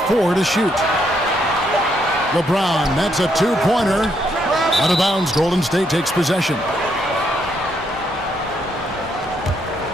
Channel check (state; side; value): normal; both; correlation 0.75